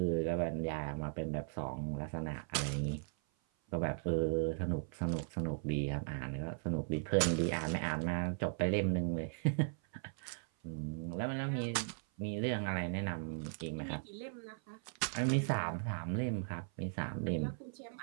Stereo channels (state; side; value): silent; left; 53 dB below the other